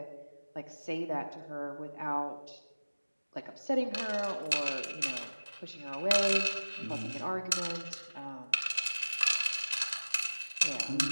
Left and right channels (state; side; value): inverted; both; correlation -1.00